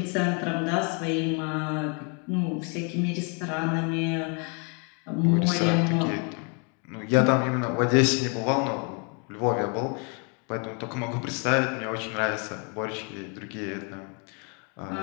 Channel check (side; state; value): right; quieter; 36.3 dB